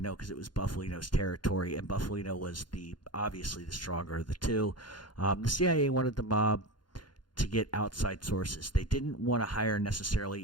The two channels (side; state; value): right; late; 0.71 ms